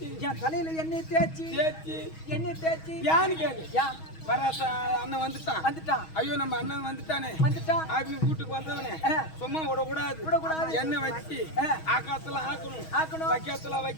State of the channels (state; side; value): late; right; 6.3 ms